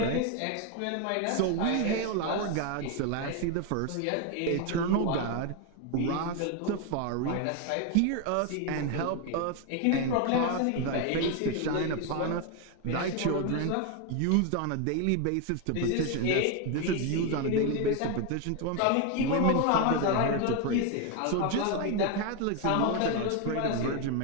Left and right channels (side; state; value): both; different; correlation 0.01